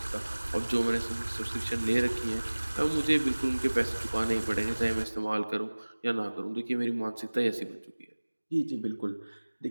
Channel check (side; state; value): both; inverted; correlation -1.00